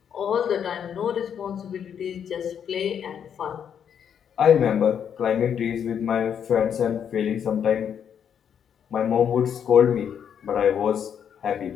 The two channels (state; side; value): quieter; right; 8.2 dB